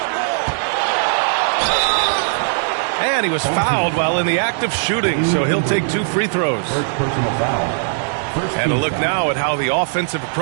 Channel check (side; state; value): left; silent; 59 dB below the other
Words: And he was fouled while in the act of shooting, so he'll take 2 free throws. First personal foul. And a look now at how the offensive